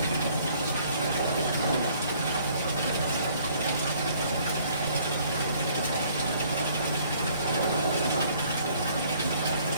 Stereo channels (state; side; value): inverted; both; correlation -0.60